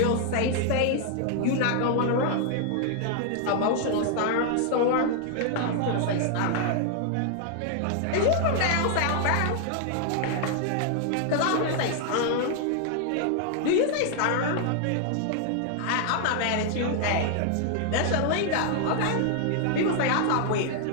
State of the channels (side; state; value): both; different; correlation 0.00